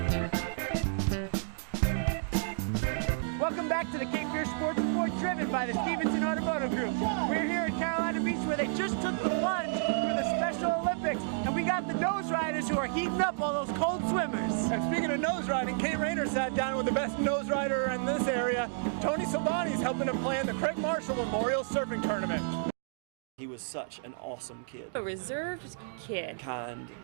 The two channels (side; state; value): left; silent; digital silence